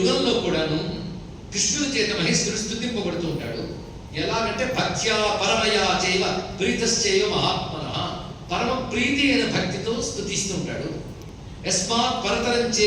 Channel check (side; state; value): both; identical; correlation 1.00